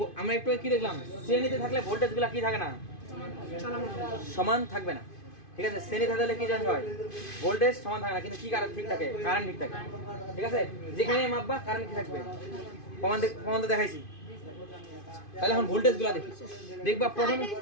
আমরা একটু কি দেখলাম, শ্রেণীতে থাকলে ভোল্টেজগুলো কি থাকে না, চলমান সমান থাকবে না। ঠিক আছে, শ্রেণীতে থাকলে কি জানতে হয়, ভোল্টেজ সমান থাকে না, কিন্তু কি কারেন্ট ঠিক থাকে, কারেন্ট ঠিক থাকে। ঠিক আছে, যেখানে মাপবা কারেন্ট কি থাকবে, প্রমাণ তো দেখাইছি। তাহলে এখন ভোল্টেজগুলো দেখি, দেখবা প্রথম আইটাই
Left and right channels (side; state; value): right; late; 2.5 ms